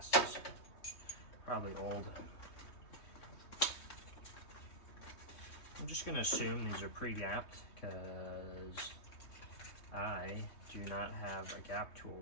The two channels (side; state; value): right; late; 3.2 ms